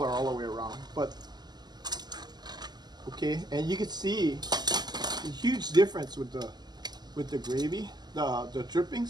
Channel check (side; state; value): left; late; 0.20 ms